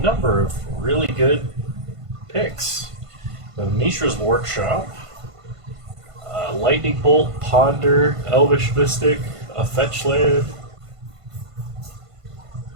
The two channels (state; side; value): late; left; 1.5 ms